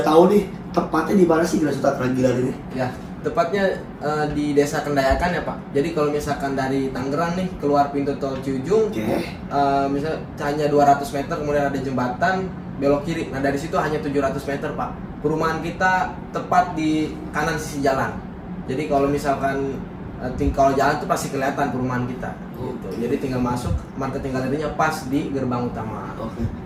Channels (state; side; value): identical; both; correlation 1.00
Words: tahu nih tepatnya di mana sih Grasuta Keragilan ini? Ya, tepatnya di Desa Kendayakan ya Pak. Jadi kalau misalkan dari Tangerang nih keluar pintu tol Ciujung, Oke. misalnya hanya 200 meter kemudian ada jembatan belok kiri. Nah dari situ hanya 700 meter Pak. Perumahan kita tepat di kanan sisi jalan. Jadi kalau misalkan kalau jalan tuh pasti kelihatan perumahan kita. Gitu. Jadi tinggal masuk, marketing galerinya pas di gerbang utama. Oke.